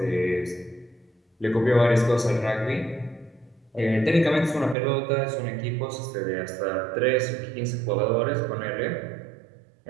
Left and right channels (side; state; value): left; drops out; at 4.8 s